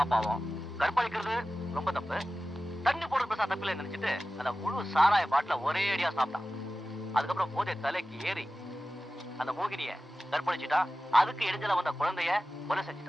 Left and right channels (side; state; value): both; normal; correlation 0.95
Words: கற்பழிக்கிறது ரொம்ப தப்பு, தண்ணி போடுறது பெருசா தப்பில்லை நினைச்சிட்டு அந்த முழு சாராய பாட்டில ஒரே அடியா சாப்பிட்டான். அதுக்கப்புறம் போதை தலைக்கு ஏறி அந்த மோகினிய கற்பழிச்சுட்டா. அதுக்கு இடைஞ்சல வந்த குழந்தைய கொலை